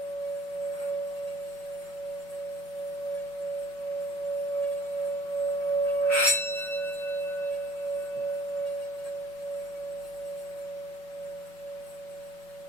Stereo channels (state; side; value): late; right; 5.4 ms